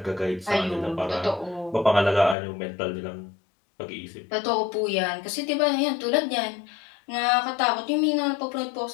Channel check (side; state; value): right; drops out; at 2.4 s